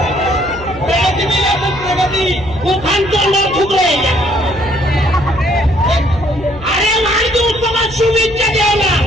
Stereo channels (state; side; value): noise; left; hum, 16 dB below the sound